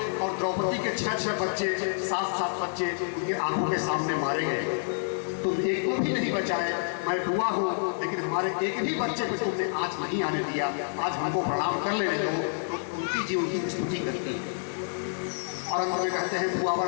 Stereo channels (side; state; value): right; silent; 56 dB below the other